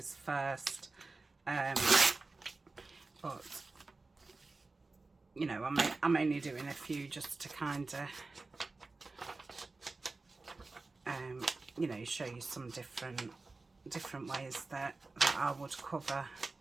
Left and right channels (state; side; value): quieter; left; 3.6 dB